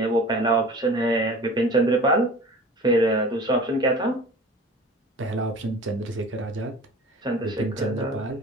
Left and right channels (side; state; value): both; normal; correlation 0.41